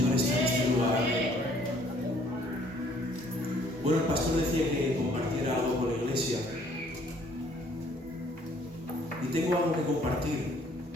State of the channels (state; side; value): normal; both; correlation 0.60